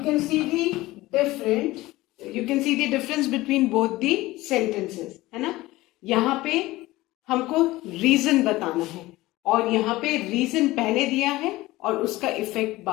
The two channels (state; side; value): quieter; right; 18.5 dB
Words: see the difference between both the sentences, है ना? यहाँ पे हमको reason बताना है और यहाँ पे रीजन पहले दिया है और उसका इफेक्ट